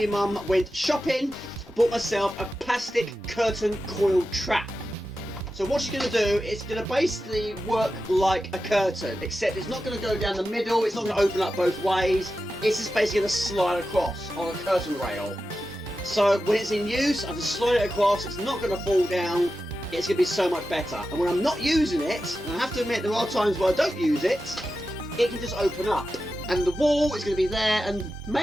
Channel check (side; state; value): both; normal; correlation 0.91